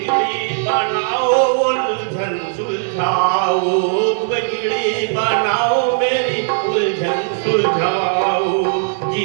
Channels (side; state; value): left; silent; 68 dB below the other